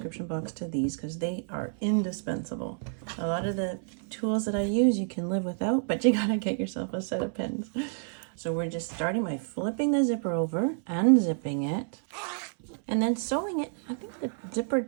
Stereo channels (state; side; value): silent; left; 58 dB below the other